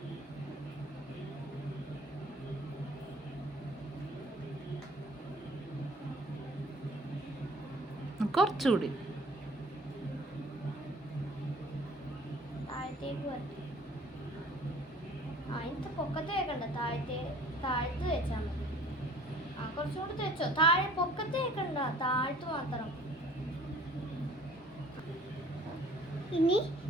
കുറച്ചുകൂടി താഴത്തേക്ക് വരട്ടെ. അതിന്റെ പൊക്കത്ത് വെക്കണ്ട, താഴത്ത് വെച്ചാൽ മതി. കുറച്ചുകൂടി വെച്ചോ. താഴെ പൊക്കത്ത് വെക്കണ്ട, താഴത്ത് മാത്രം. ഇനി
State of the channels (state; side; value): normal; both; correlation 0.50